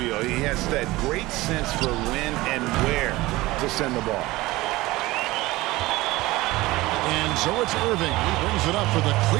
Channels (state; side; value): quieter; left; 19.3 dB